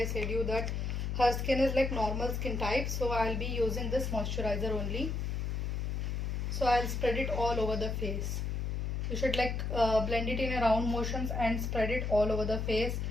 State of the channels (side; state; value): left; noise; hum, 1 dB below the sound